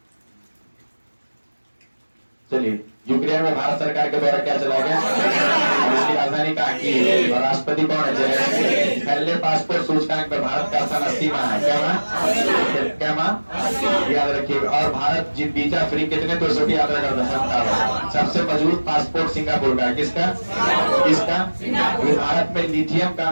चलिए, यूक्रेन में भारत सरकार के द्वारा क्या चला गया? इसकी राजधानी कहाँ की? और राष्ट्रपति कौन है? पहले पासपोर्ट सूचकांक में भारत का स्थान 80 है। क्या याद रखिए। और भारत वीजा फ्री कितने देशों की यात्रा करता है? सबसे मजबूत पासपोर्ट सिंगापुर का। किसका? भारत में लिथियम का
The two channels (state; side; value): inverted; both; correlation -1.00